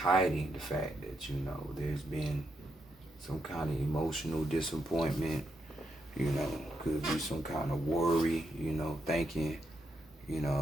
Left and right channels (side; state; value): both; normal; correlation 0.81